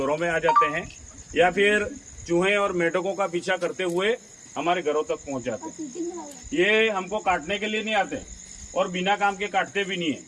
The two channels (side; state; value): both; identical; correlation 1.00